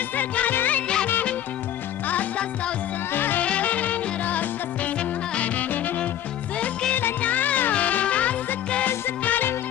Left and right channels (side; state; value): right; quieter; 11.5 dB